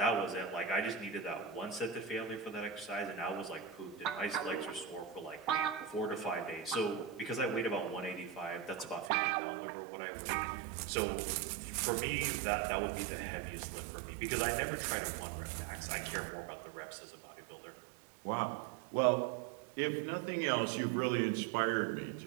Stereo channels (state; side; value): drops out; left; at 9.1 s